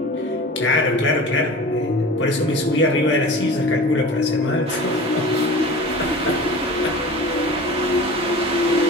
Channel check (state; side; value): normal; both; correlation 0.37